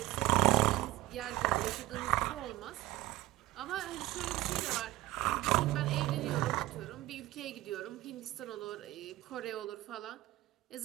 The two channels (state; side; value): quieter; left; 17.1 dB